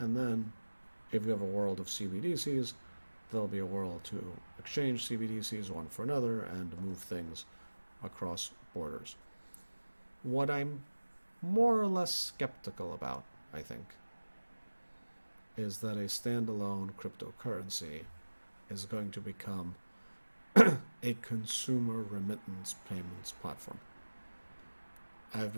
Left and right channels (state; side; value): inverted; both; correlation -1.00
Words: then if you have a world of CBDCs, there'll be a world to exchange CBDCs one for another and move things across borders. What I'm more or less skeptical about, I think, is that a standalone cryptocurrency is going to become a consumer remittance payments platform. I've